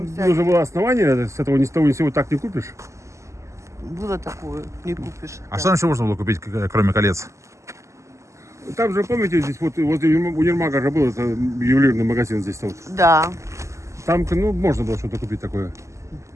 всякие. нужно было основание, с этого ни с того ни с сего так не купишь. Было такое, не купишь. А да. что там еще можно было купить, кроме колец? Там же, помните, здесь вот возле универмага же был это ювелирный магазин здесь вот. Да, Там, ну, можно было что-то купить такое.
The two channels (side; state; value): left; late; 0.14 ms